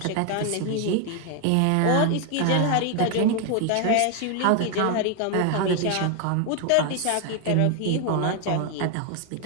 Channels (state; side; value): different; both; correlation 0.01